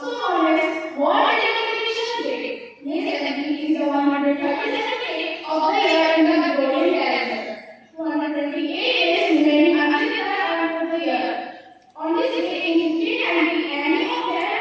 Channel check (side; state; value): both; identical; correlation 1.00